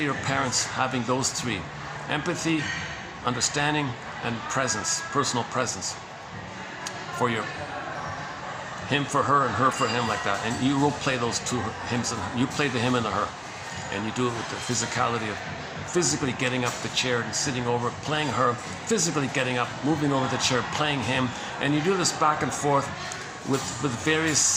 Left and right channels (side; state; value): both; identical; correlation 1.00